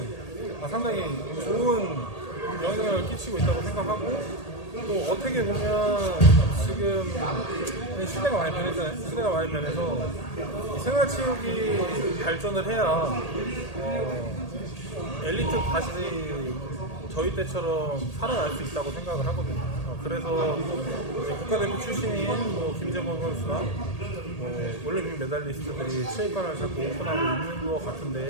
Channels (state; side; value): late; right; 1.8 ms